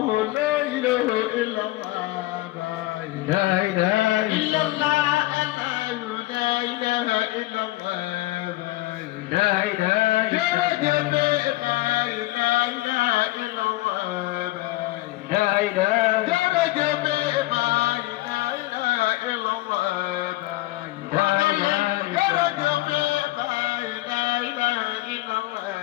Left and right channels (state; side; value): quieter; right; 18.6 dB